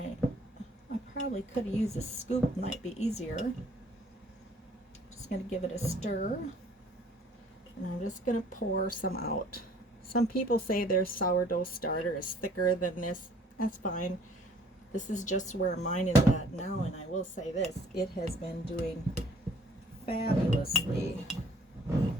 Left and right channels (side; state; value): both; normal; correlation 0.57